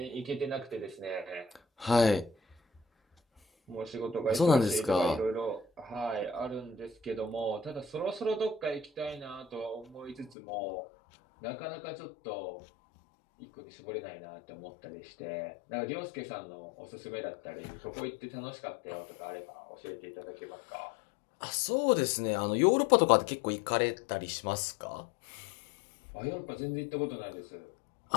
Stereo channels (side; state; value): right; drops out; at 10.4 s